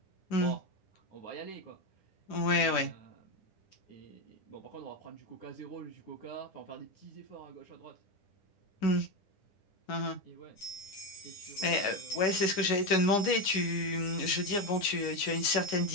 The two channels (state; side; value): late; right; 9.9 ms